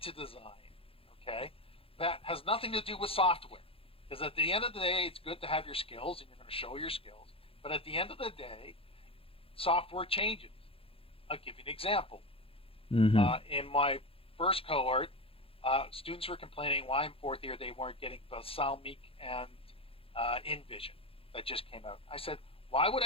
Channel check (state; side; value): late; right; 0.27 ms